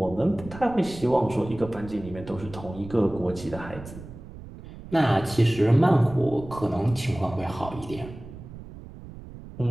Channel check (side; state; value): right; noise; rumble, 15 dB below the sound